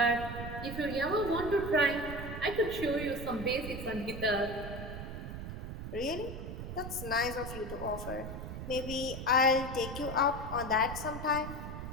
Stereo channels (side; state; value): right; noise; rumble, 7 dB below the sound